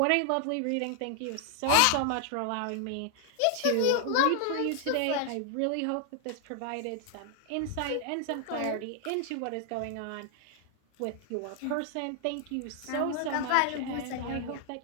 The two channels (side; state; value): both; different; correlation 0.00